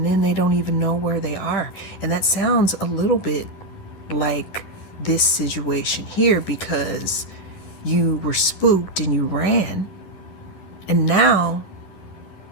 then they don't even know where they are. And that sounds a little bit like this situation here, because you were spooked and you ran, and now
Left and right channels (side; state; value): right; late; 11 ms